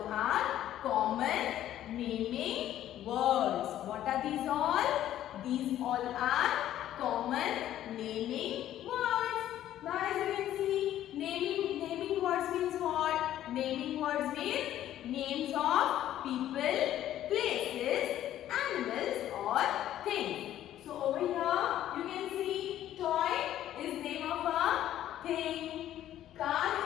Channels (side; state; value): right; quieter; 12.3 dB